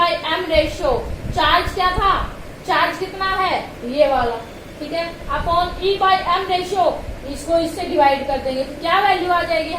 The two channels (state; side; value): identical; both; correlation 1.00